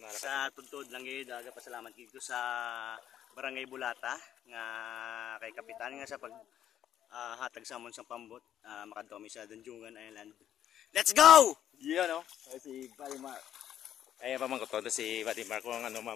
Sa tuntod lang gid, pasalamat dito sa Barangay Bulata nga kay kapitan nga sa pag hatag sa amon sa pambot, makadto mi sa Danjungan Island. Let's go! Yeah, no? Si Buddy Mark. Ay, pamangkot ko si Buddy Mark kung ano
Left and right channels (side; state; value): right; quieter; 10.6 dB